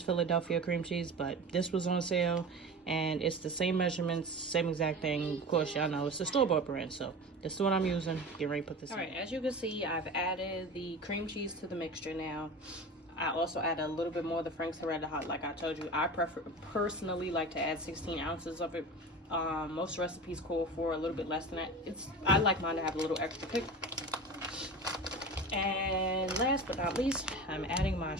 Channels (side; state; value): both; normal; correlation 0.31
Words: Philadelphia cream cheese, but this was on sale and it's the same measurements, same exact thing. Of course, y'all know it's the store-bought brand, so this is what I'm using. Get ready to put this in. All right, as you can see, I've added the cream cheese to the mixture now. I also add a little bit more of the Frank's Red Hot. Like I told you, I personally like to add 16 ounces of it. Most recipes call for a little bit less than that. I like mine to have a little extra kick. And last but not least, I'm adding my